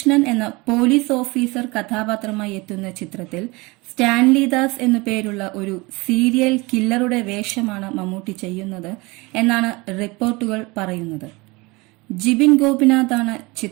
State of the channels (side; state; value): left; quieter; 24.4 dB